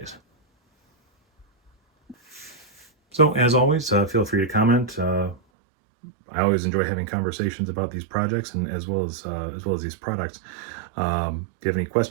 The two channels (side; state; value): left; drops out; at 5.4 s